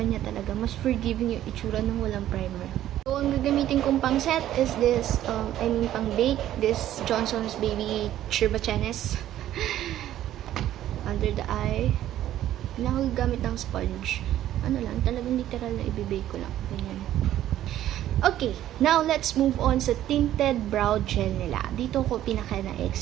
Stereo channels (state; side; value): quieter; left; 12.6 dB